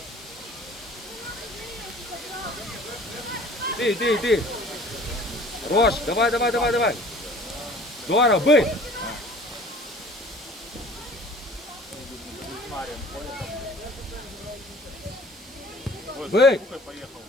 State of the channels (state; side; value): normal; both; correlation 0.48